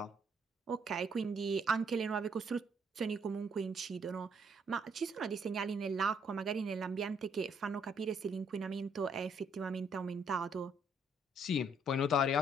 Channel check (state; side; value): normal; both; correlation 0.68